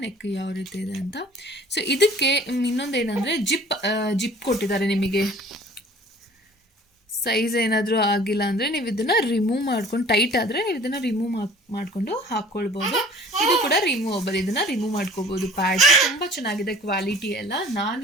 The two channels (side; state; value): both; normal; correlation 0.48